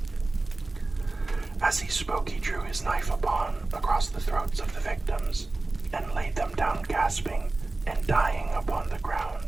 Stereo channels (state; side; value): quieter; left; 3.2 dB